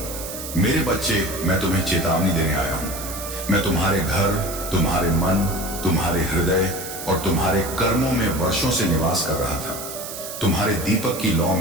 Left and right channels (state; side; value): noise; right; hiss, 9 dB below the sound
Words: मेरे बच्चे, मैं तुम्हें चेतावनी देने आया हूं। मैं तुम्हारे घर, तुम्हारे मन, तुम्हारे हृदय और तुम्हारे कर्मों में वर्षों से निवास कर रहा था। तुम्हारे दीपक की लौ